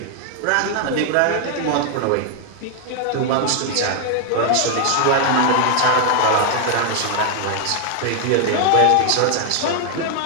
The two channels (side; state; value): both; different; correlation 0.00